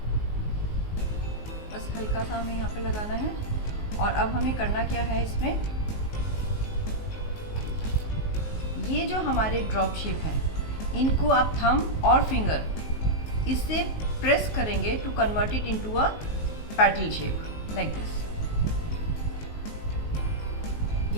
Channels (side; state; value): right; late; 19 ms